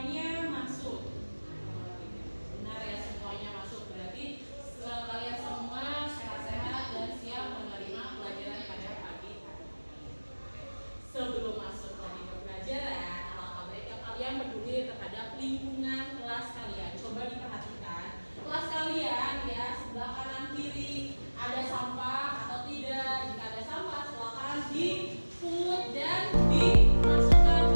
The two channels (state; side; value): inverted; both; correlation -1.00